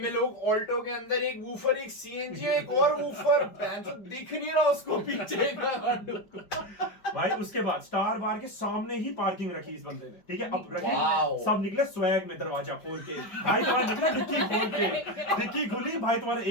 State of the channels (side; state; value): right; late; 5.1 ms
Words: लोग ऑल्टो के अंदर एक वूफर, एक सीएनजी, एक और वूफर, दिख नहीं रहा उसको पीछे का। भाई उसके बाद स्टार बार के सामने ही पार्किंग रखी इस बंदे ने, ठीक है। अब रखी, वाओ। सब निकले स्वैग में, दरवाजा खोल के भाई, तुम्हारा निकला डिक्की खोल के, डिक्की खुली भाई, तुम्हारा